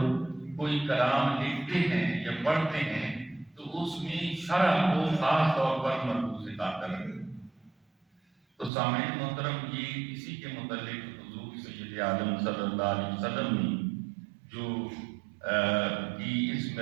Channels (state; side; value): drops out; left; at 8.7 s